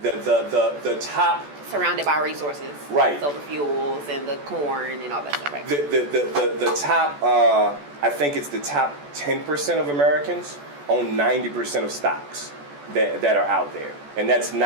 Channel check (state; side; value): late; left; 14 ms